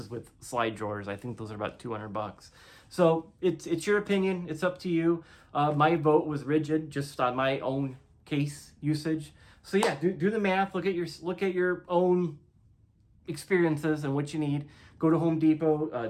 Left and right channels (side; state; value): both; identical; correlation 1.00